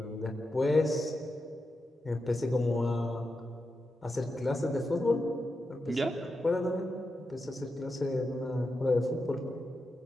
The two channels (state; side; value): normal; both; correlation 0.88